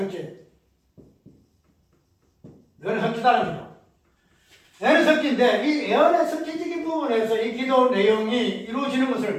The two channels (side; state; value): both; identical; correlation 1.00